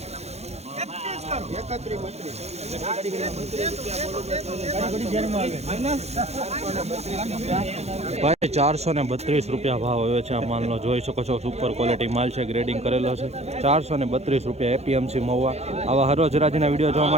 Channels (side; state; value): left; late; 0.31 ms